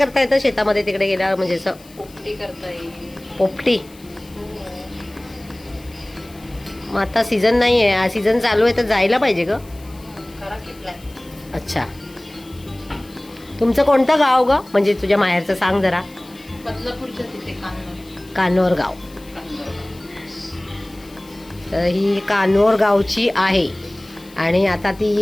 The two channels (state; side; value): noise; left; hiss, 24 dB below the sound